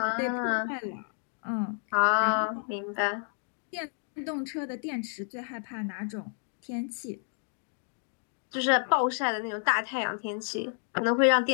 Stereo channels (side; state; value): right; silent; 58 dB below the other